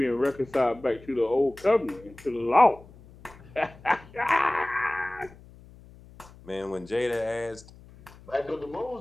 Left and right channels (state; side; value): noise; left; hum, 22 dB below the sound